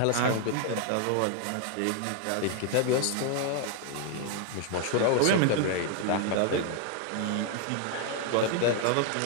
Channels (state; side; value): different; both; correlation 0.00